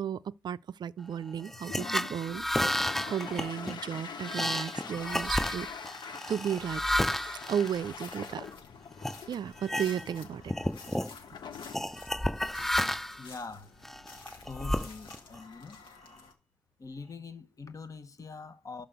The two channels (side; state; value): both; normal; correlation 0.81